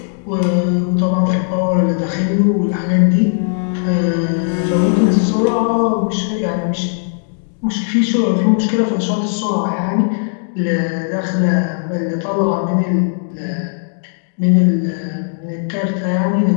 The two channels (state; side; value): silent; right; digital silence